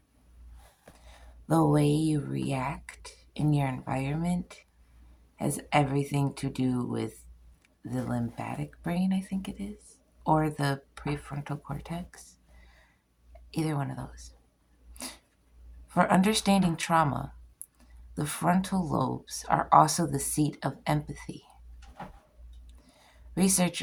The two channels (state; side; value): identical; both; correlation 1.00